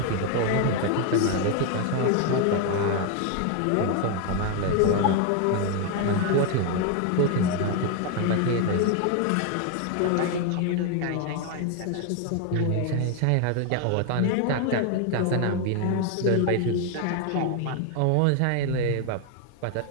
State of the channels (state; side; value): different; both; correlation 0.01